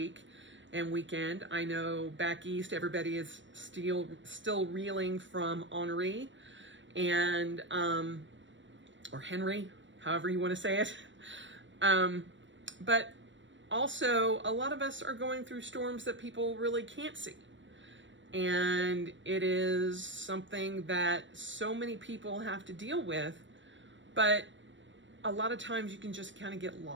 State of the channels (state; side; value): late; left; 0.54 ms